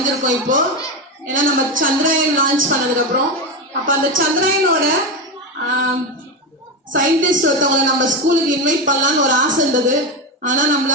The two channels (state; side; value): normal; both; correlation 0.15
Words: இப்போ. ஏன்னா நம்ம சந்திராயன் லான்ச் பண்ணதுக்கு அப்புறம் அப்ப அந்த சந்திராயனோட சயின்டிஸ்ட் ஒருத்தவங்களை நம்ம ஸ்கூலுக்கு இன்வைட் பண்ணலாம்னு ஒரு ஆசை இருந்தது. ஆனா